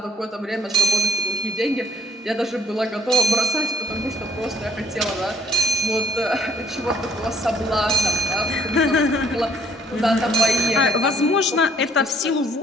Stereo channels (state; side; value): normal; both; correlation 0.62